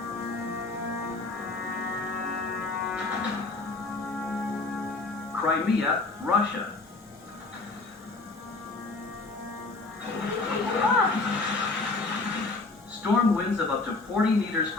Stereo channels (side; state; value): right; quieter; 3.5 dB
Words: Crimea, Russia. Storm winds of up to 40 meters